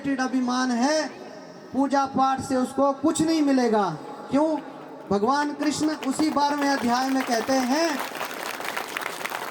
अभिमान है, पूजा पाठ से उसको कुछ नहीं मिलेगा। क्यों? भगवान कृष्ण उसी 12वें अध्याय में कहते हैं,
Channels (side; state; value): both; identical; correlation 1.00